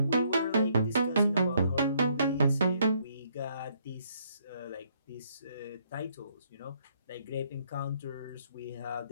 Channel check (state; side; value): inverted; both; correlation -0.69